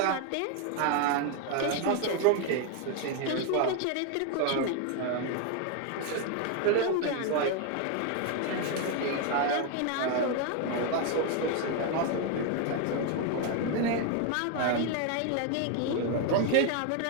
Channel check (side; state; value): both; different; correlation 0.01